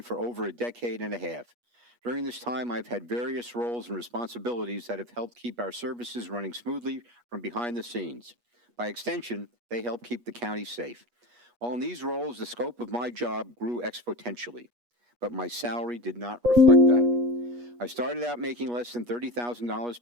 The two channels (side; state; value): left; late; 8.3 ms